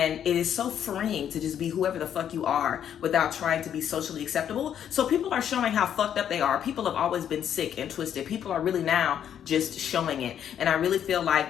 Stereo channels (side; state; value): right; quieter; 9.4 dB